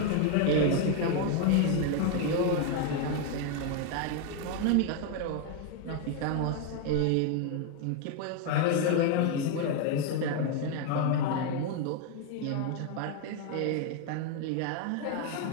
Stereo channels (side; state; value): both; different; correlation 0.01